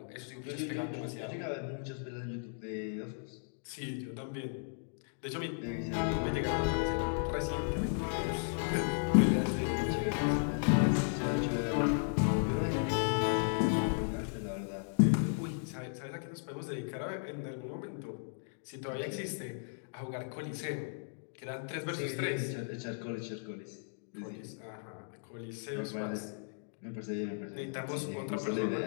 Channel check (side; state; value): right; silent; digital silence